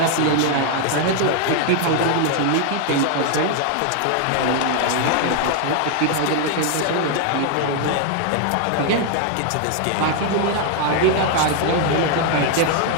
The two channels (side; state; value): both; different; correlation 0.00